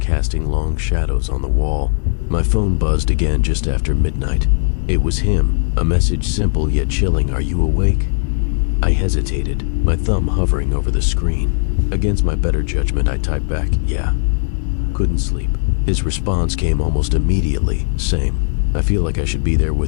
long shadows on the wall. My phone buzzed again just after midnight. It was him, a message simple yet chilling. "Are you awake?" I hesitated, my thumb hovering over the screen. Against my better judgment, I typed back, "Yeah." Couldn't sleep. His response came almost immediately. "Same. I feel like I should be there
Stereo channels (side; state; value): right; silent; digital silence